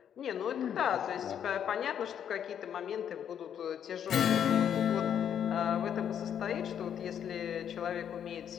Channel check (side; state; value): right; quieter; 9.0 dB